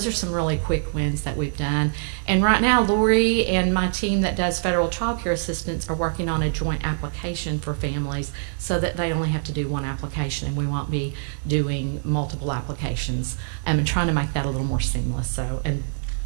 are some really quick wins that we've done. And right now, Lori and my team that does federal child care assistance are working on a joint application for families so that they only have to do one application and we won't be doing multiple applications, and trying to make that a little more seamless. So, and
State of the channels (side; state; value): left; silent; 59 dB below the other